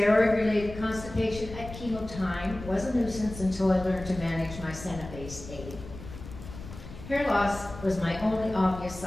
constipation at chemo time was a nuisance until I learned to manage my Senna-based aid. Hair loss was my only obvious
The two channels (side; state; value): left; noise; rumble, 13 dB below the sound